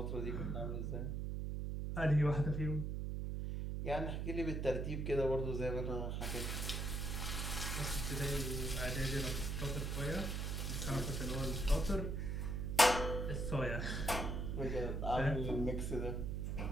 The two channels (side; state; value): right; noise; hum, 1 dB below the sound